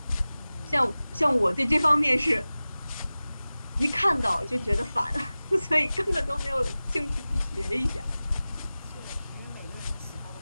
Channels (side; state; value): both; inverted; correlation -0.97